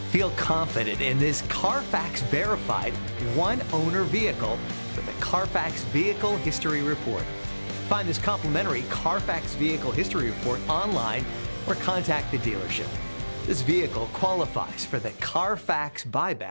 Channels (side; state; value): both; inverted; correlation -1.00